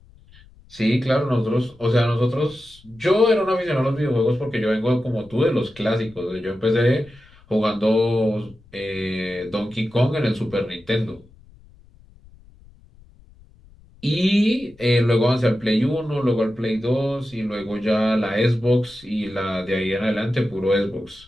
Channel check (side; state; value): left; noise; rumble, 26 dB below the sound